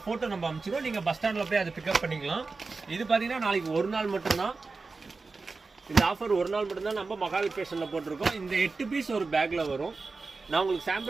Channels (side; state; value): left; quieter; 4.1 dB